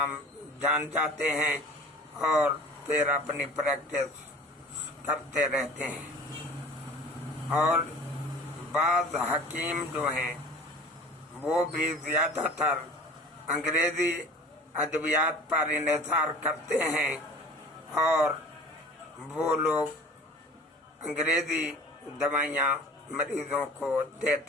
जान जाते हैं और फिर अपनी प्रैक्टिस करते रहते हैं। और बाज़ हकीम जो हैं वो भी ज़्यादातर अंग्रेज़ी अद्वियात पर इन्हिसार करते हैं और वो लोग अंग्रेज़ी दवाइयाँ मरीजों को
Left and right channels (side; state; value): both; normal; correlation 0.43